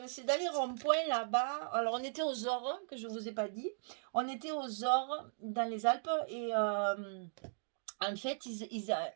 les ronds-points là-bas. Alors on était aux Ores, que je ne vous ai pas dit. On était aux Ores dans les Alpes et en fait,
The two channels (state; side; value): silent; left; digital silence